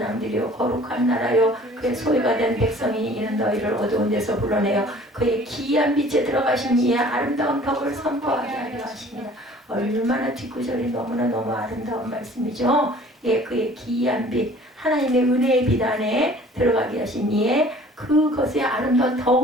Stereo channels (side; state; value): both; normal; correlation 0.51